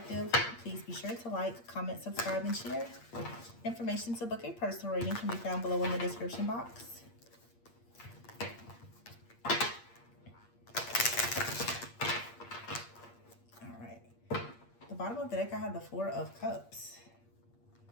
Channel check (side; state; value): right; late; 8.6 ms